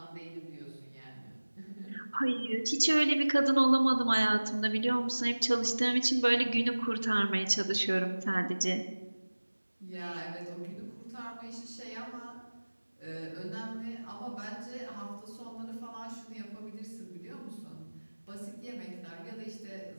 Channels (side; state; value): both; inverted; correlation -1.00